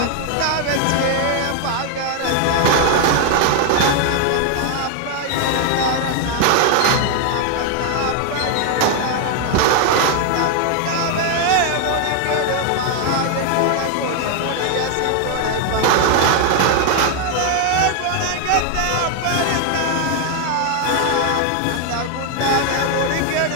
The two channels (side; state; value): both; different; correlation 0.01